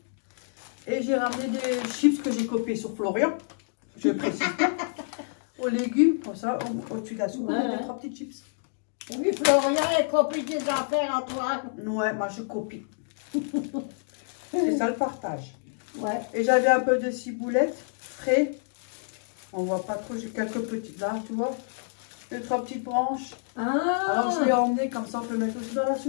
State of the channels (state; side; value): silent; right; digital silence